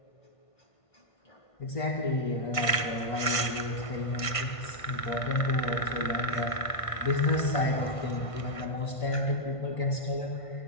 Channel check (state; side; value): late; right; 1.5 ms